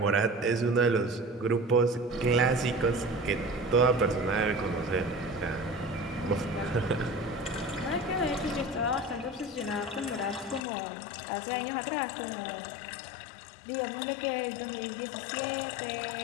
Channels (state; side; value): drops out; right; at 10.6 s